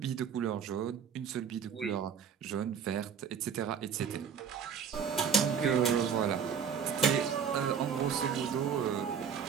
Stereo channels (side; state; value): left; quieter; 7.2 dB